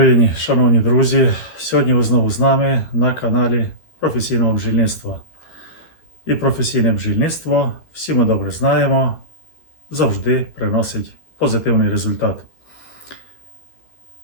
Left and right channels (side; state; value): right; late; 13 ms